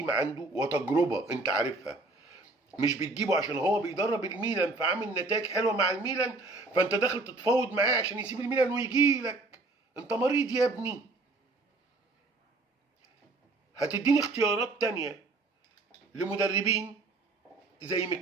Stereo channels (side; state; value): left; quieter; 3.3 dB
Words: عنده وتجربه انت عارفها، مش بتجيبه عشان هو بيدرب الميلان فعامل نتائج حلوه مع الميلان فانت داخل تتفاوض معاه عشان يسيب الميلان ويجي لك. انت مريض يا ابني. هتديني اختيارات تانية لمدربين زي